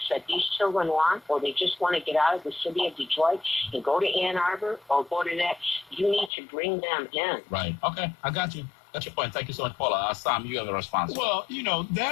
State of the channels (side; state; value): right; drops out; at 6.3 s